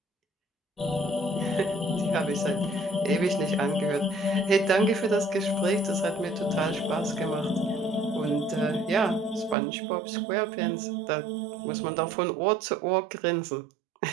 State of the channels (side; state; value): left; drops out; at 9.6 s